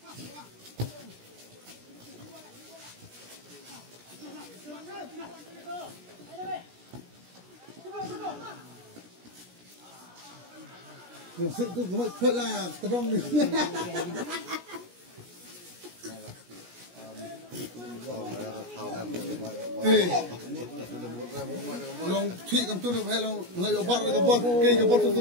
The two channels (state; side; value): late; left; 17 ms